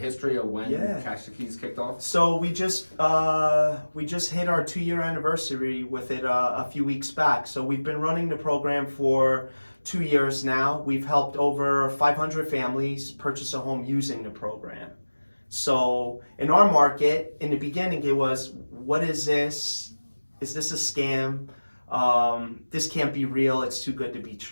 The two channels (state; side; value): inverted; both; correlation -1.00